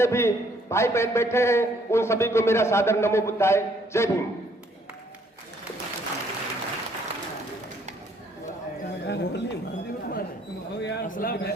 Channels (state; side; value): normal; both; correlation 0.65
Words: भी भाई बहन बैठे हैं उन सभी को मेरा सादर नमो बुद्धाय। जय भीम।